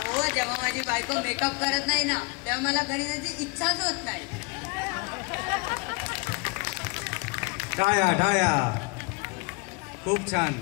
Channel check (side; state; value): right; quieter; 30.3 dB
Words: जेव्हा माझी बायको मेकअप करत नाही ना तेव्हा मला घरी जायची इच्छाच होत नाही. टाळ्या टाळ्या खूप छान.